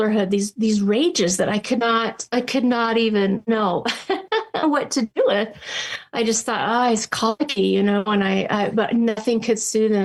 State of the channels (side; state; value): both; identical; correlation 1.00